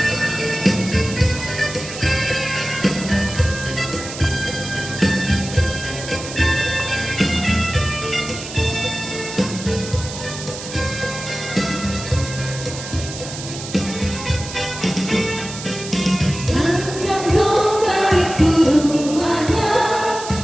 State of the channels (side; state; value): right; noise; hiss, 10 dB below the sound